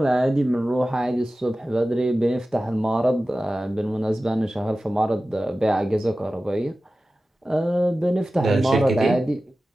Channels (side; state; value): both; normal; correlation 0.95